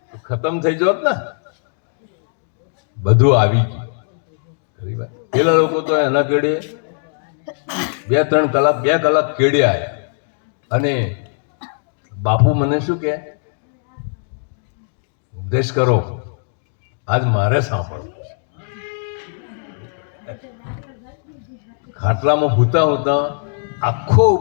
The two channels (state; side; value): silent; right; digital silence